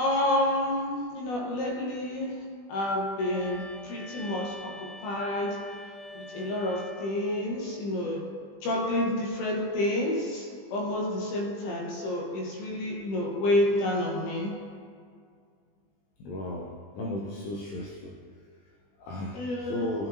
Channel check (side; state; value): right; late; 20 ms